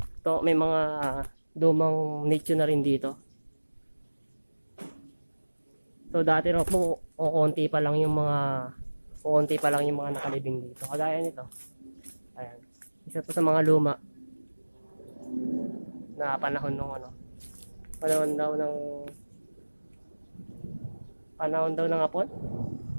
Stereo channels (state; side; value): inverted; both; correlation -1.00